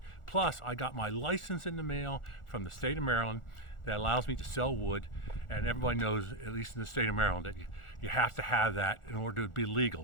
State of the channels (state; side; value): late; right; 1.4 ms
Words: Plus, I got my license in the mail from the state of Maryland that allows me to sell wood. And everybody knows, at least in the state of Maryland, that you have to have that in order to be